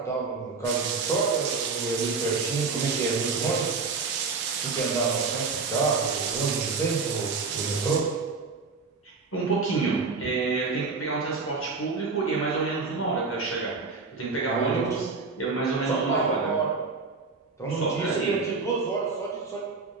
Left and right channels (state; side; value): quieter; left; 4.4 dB